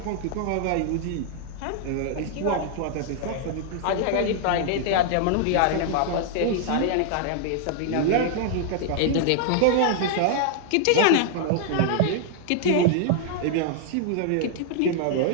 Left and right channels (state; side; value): different; both; correlation -0.01